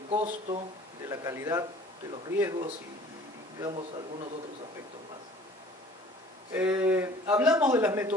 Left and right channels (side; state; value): both; normal; correlation 0.49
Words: costo, de la calidad, de los riesgos y digamos algunos otros aspectos más. Hablamos de las